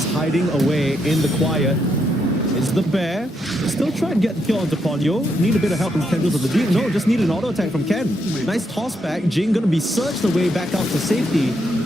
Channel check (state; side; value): normal; both; correlation 0.79